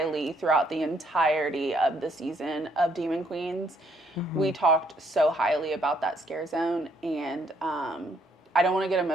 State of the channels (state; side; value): normal; both; correlation 0.69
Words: throughout the entirety of the season of Demon Queens. We talked so highly about that scare zone, and I don't want to get